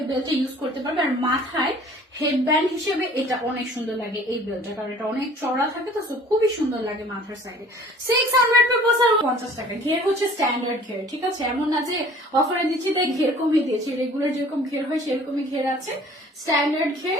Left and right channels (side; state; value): both; normal; correlation 0.50